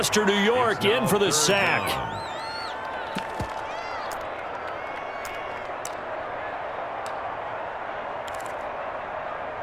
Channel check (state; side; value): identical; both; correlation 1.00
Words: New York, in for the sack.